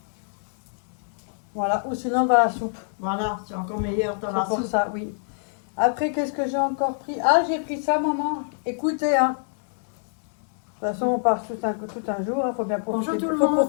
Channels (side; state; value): right; silent; 59 dB below the other